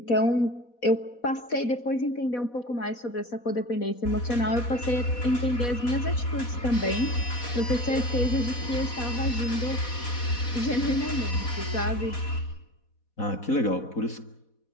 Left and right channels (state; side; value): late; right; 4.1 ms